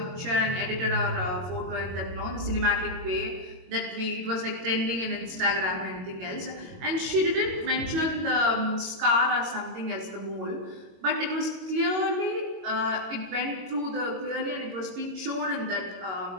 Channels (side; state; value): left; late; 22 ms